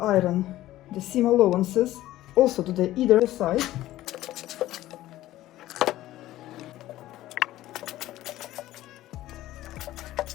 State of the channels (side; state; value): right; quieter; 15.1 dB